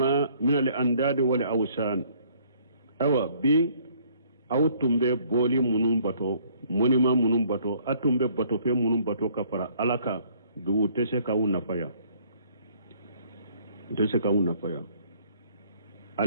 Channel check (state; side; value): inverted; both; correlation -0.61